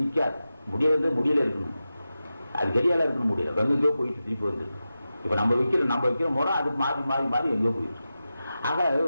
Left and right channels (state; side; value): inverted; both; correlation -0.92